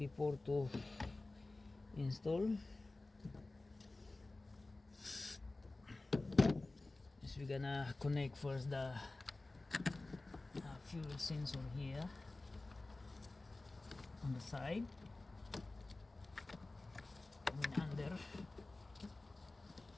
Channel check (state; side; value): quieter; right; 3.1 dB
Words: to install is we're gonna connect first the fuel sensor here on the side, and under